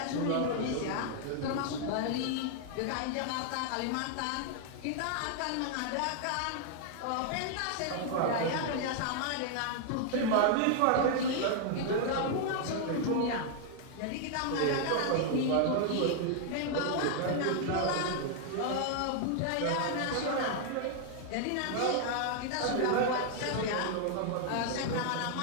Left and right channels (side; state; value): both; different; correlation 0.00